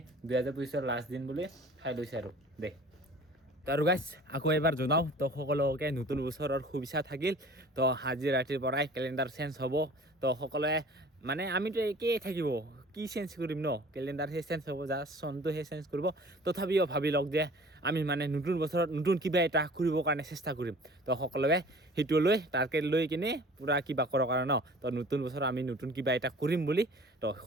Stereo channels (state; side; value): normal; both; correlation 0.47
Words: 2025 লাষ্ট দিন বুলি খাই লৈছে আৰু দে তো আৰু গাইছ আকৌ এবাৰ জনাওঁ তো সকলোকে নতুন বছৰৰ শুভেচ্ছা থাকিল তো আজি ৰাতিৰ পৰাই কেলেণ্ডাৰ চেঞ্জ হ'ব তো সকলোৱে মানে আমিতো একেই থাকিব কি চেঞ্জ কৰিম ন কেলেণ্ডাৰহে চেঞ্জ হ'ব জাষ্ট চনটোহে চেঞ্জ কৰিব তথাপিও ভাবি লওক যে আমি মানে নতুন বছৰত নতুন কিবা এটা কৰিবৰ কাৰণে চেষ্টা কৰিম তো সকলোৱে সেইটো লৈ টাৰ্গেট লৈ কিনে পূৰা কিবা কৰক আৰু ন তো নতুন বছৰত আমি নতুন কিবা এটা কৰিম বুলি তো